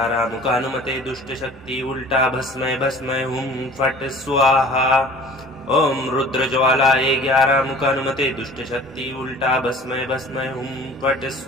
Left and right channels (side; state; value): both; normal; correlation 0.46